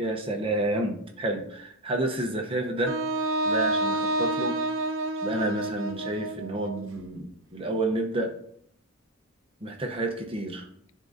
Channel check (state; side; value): normal; both; correlation 0.10